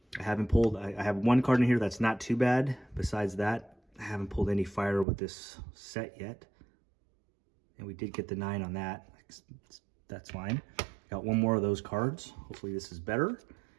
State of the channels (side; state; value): left; drops out; at 5.1 s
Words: I have one card in here that's not too bad. Besides that, I haven't pulled any fire with this set yet. and we did get the 9 on that. That's fine. Got one more of those cards. Hopefully this is better.